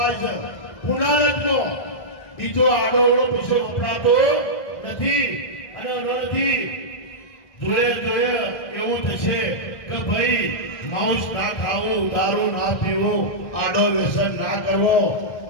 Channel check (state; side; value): late; right; 1.6 ms